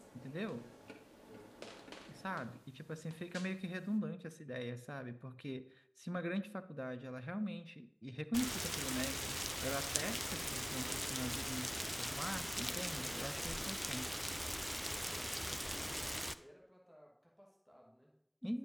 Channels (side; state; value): both; identical; correlation 1.00